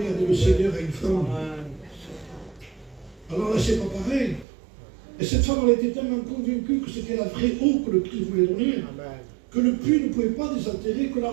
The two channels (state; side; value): drops out; left; at 4.5 s